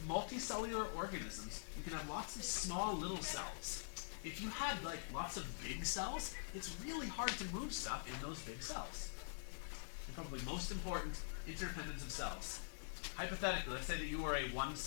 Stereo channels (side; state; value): right; silent; digital silence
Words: Multicellular organisms, you can have lots of small little cells. If you had like lots of big cells, it's really hard to move stuff in those big cells. And probably most important, interdependence of cells. Hypothetically, let's say that you are a